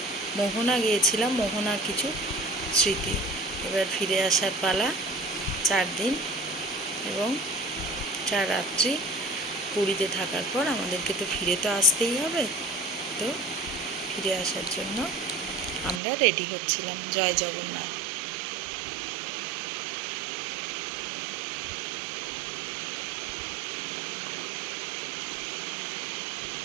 মোহনা গিয়েছিলাম, মোহনার কিছু স্মৃতি। এবার ফিরে আসার পালা। 4 দিন এবং 4 রাত্রি পুরীতে থাকার পর আমাদেরকে তো ফিরে তো আসতেই হবে। তো ফিরে আসার জন্য আমরা রেডি হচ্ছিলাম। জয় জগন্নাথ।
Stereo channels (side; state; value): left; drops out; at 16.0 s